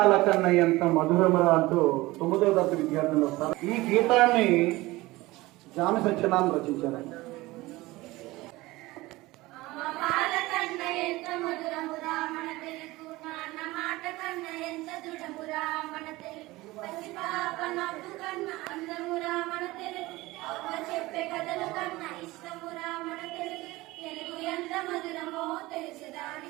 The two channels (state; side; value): quieter; left; 19.8 dB